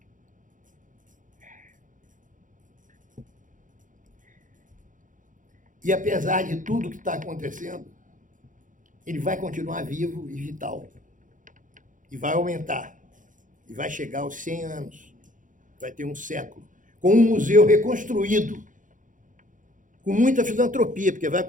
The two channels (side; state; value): left; late; 0.38 ms